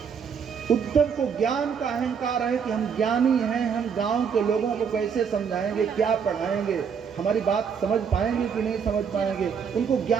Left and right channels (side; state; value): left; quieter; 6.7 dB